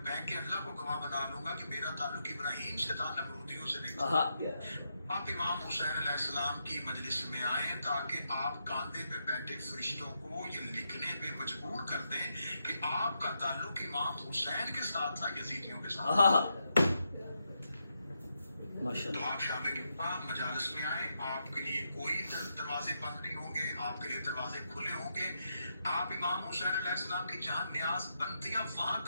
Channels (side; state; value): both; inverted; correlation -0.82